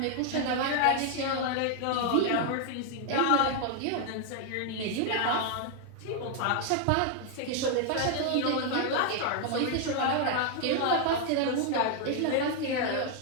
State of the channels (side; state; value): both; different; correlation 0.00